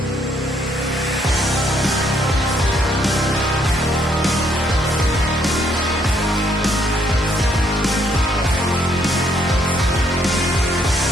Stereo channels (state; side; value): normal; both; correlation 0.70